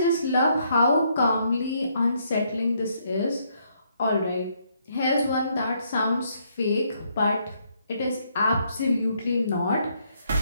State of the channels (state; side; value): inverted; both; correlation -0.72